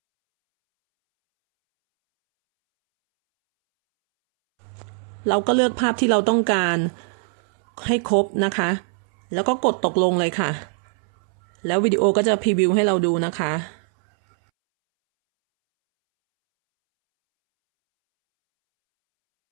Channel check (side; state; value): left; silent; 65 dB below the other